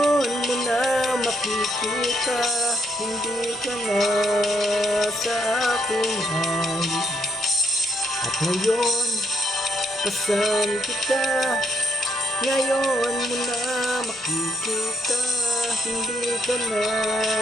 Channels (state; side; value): normal; both; correlation 0.74